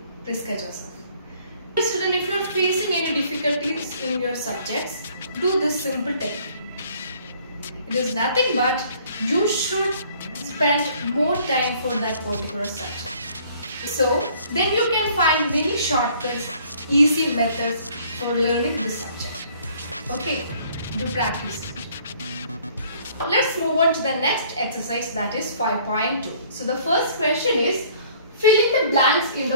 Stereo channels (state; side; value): inverted; both; correlation -0.58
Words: Priska Joseph. Student, if you are facing any difficulties in your subjects, do this simple technique. It is nothing but you should spend more time for that particular subject. So then you can find many shortcuts, easy methods for learning this subject. Okay, do practice. Let's move on to the next exercise, that is 5.2. So the first question is, fill in the blanks in